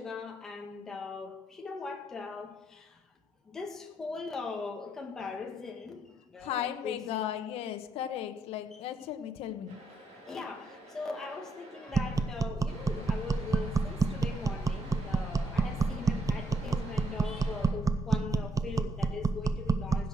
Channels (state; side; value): normal; both; correlation 0.75